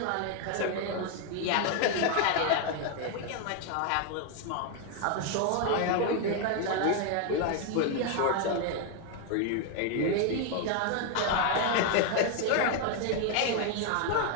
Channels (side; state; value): both; different; correlation 0.01